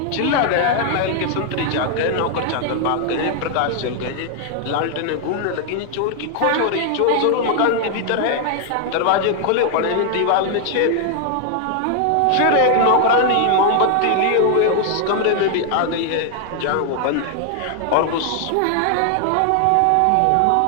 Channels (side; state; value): both; different; correlation 0.00